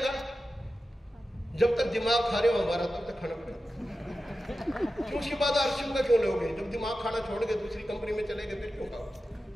जब तक दिमाग खा रहे हो हमारा, तब तक खाना पड़ेगा। क्यों उसके बाद आरसीएम का क्यों लोगे? जब दिमाग खाना छोड़ के दूसरी कंपनी में चले गए, फिर क्यों खाओ?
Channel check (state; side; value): normal; both; correlation 0.93